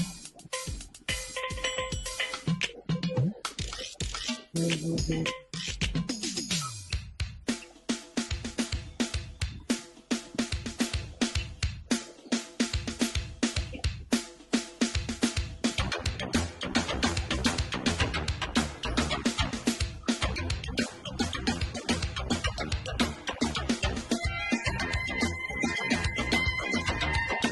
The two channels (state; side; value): identical; both; correlation 1.00